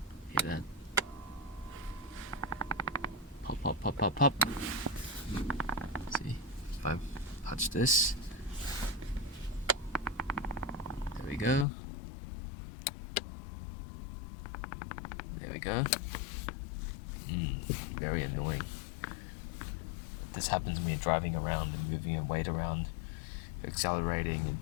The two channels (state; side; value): drops out; right; at 11.7 s